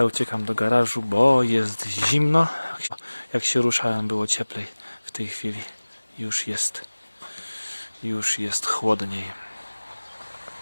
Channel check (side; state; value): both; inverted; correlation -1.00